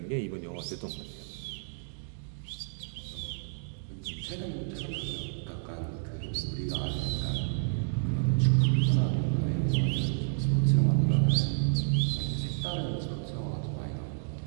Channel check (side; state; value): left; silent; digital silence